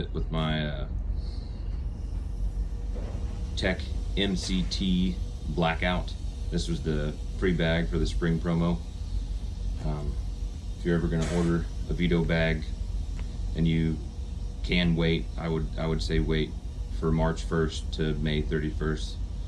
with my Tech MCT Blackout. This was the free bag for the spring promo. If you're ever gonna order a Veto bag and you can wait, I would say wait for March 1st to May 31st.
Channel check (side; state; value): both; identical; correlation 1.00